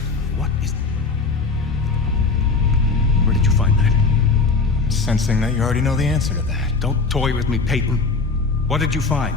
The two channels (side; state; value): right; quieter; 4.2 dB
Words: What is... Where did you find that? I'm sensing that you already know the answer to that. Don't toy with me, Peyton. What did you find?